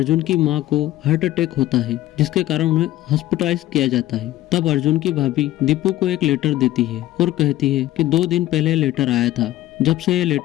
की माँ को हार्ट अटैक होता है, जिसके कारण उन्हें हॉस्पिटलाइज किया जाता है। तब अर्जुन की भाभी दीपू को एक लेटर देती है और कहती है कि 2 दिन पहले लेटर आया था। जब से ये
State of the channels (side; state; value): right; quieter; 14.9 dB